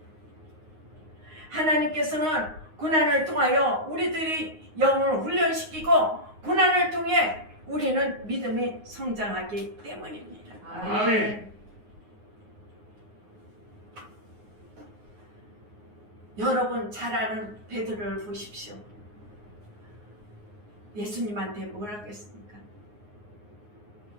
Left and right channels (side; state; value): left; late; 9.5 ms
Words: 하나님께서는 고난을 통하여 우리들이 영을 훈련시키고 고난을 통해 우리는 믿음이 성장하기 때문입니다. 아멘. 여러분 잘 아는 베드로를 보십시오. 예수님한테 뭘 하겠습니까?